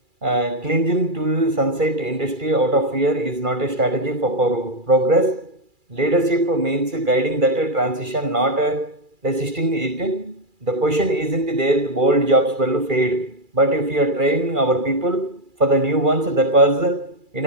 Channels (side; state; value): left; late; 2.3 ms